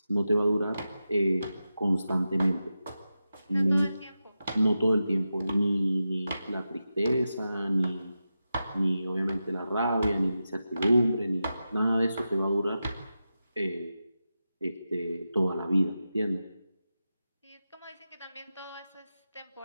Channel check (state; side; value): inverted; both; correlation -0.91